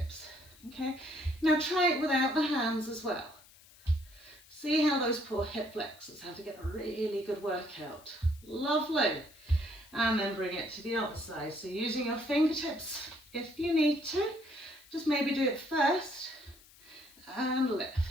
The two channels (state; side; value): noise; left; hiss, 24 dB below the sound